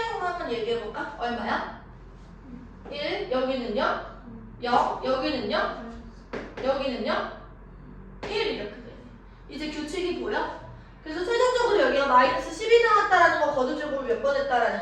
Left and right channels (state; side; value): identical; both; correlation 1.00